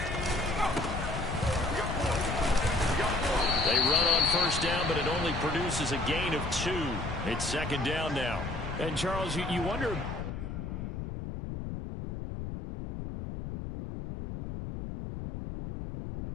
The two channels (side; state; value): left; noise; rumble, 6 dB below the sound